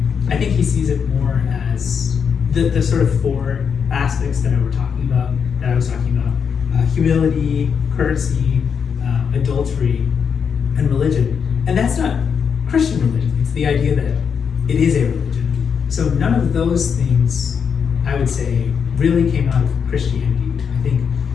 I think he sees it more as the sort of four aspects that I was talking about, humility, courtesy, adultery, and religion. And that's not Christian religion. It's the idea that it is a religion. So none of those things, I would say, really came out of Christianity. I think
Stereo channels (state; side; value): quieter; right; 6.7 dB